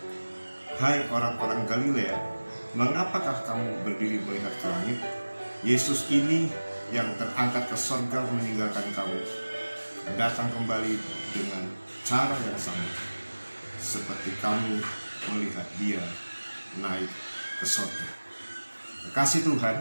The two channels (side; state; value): both; inverted; correlation -1.00